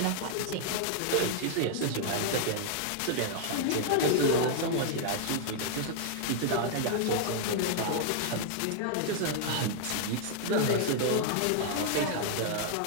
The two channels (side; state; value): both; different; correlation -0.01